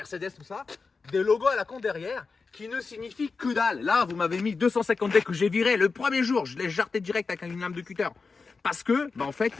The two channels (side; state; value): right; quieter; 4.5 dB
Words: tout ça, des logos à la con derrière qui ne signifient que dalle. Là, vous m'avez mis 250D que j'ai viré le premier jour. Je l'ai jarté direct avec une lame de cutter. Parce que, en fait,